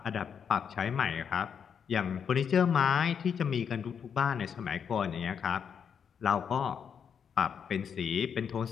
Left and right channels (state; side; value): quieter; right; 7.3 dB